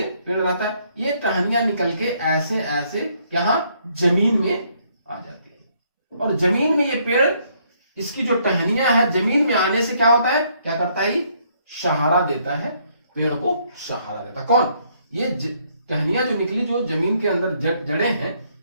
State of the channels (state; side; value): inverted; both; correlation -0.69